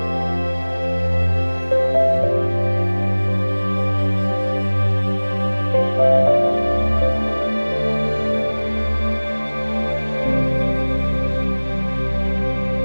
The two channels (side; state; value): both; inverted; correlation -1.00